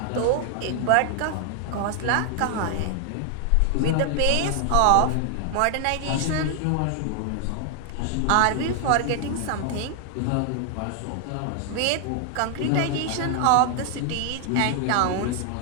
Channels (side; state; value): both; different; correlation 0.00